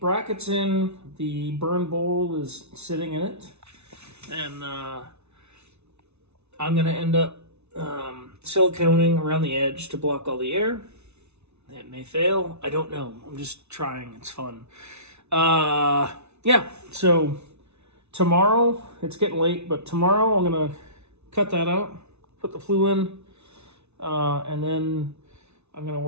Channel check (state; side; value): late; left; 0.81 ms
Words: brackets in, the burn bowl is sitting in it, and I'm going to end up siliconing around the edge to block all the air. It may fail. I don't know. I'm just trying. It's fun. Yeah, so tomorrow, it's getting late, but tomorrow I'm going to cut that out, put the flue in, and then I'm going to